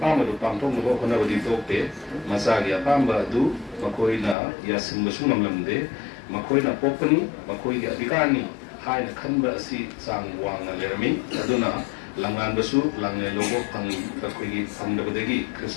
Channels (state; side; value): drops out; right; at 4.4 s